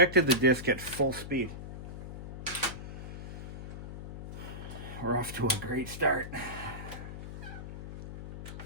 the disc at full speed. We're off to a great start.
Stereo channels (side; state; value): left; noise; hum, 10 dB below the sound